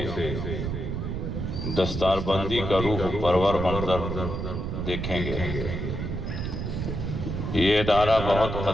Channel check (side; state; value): right; noise; rumble, 3 dB below the sound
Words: دستار بندی کا روح پرور منظر دیکھیں گے۔ یہ ادارہ بہت